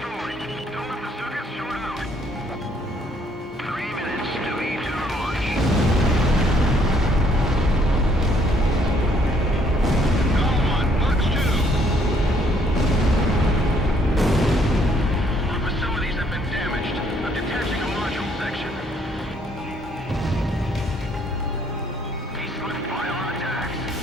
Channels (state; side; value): normal; both; correlation 0.66